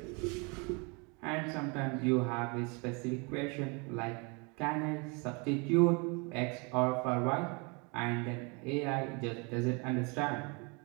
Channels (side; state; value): left; quieter; 31.3 dB